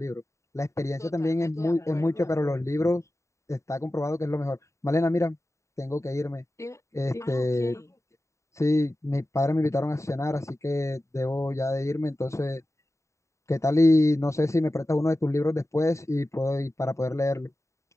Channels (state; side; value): late; right; 0.14 ms